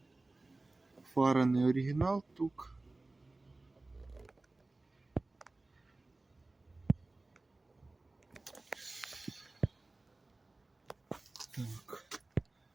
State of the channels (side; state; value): left; quieter; 3.1 dB